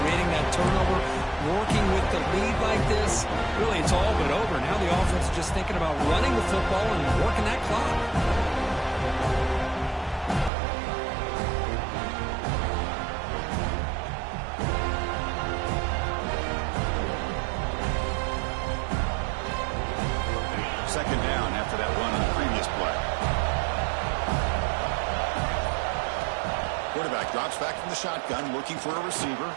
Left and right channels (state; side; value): drops out; left; at 10.5 s